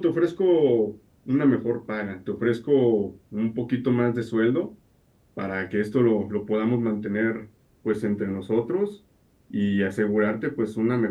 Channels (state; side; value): identical; both; correlation 1.00